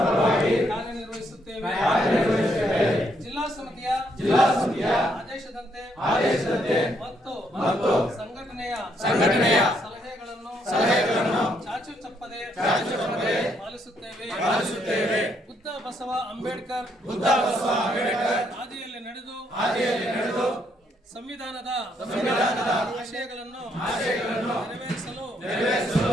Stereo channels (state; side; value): normal; both; correlation 0.73